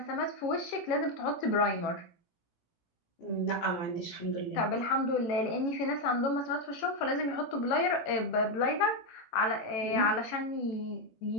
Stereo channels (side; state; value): right; late; 18 ms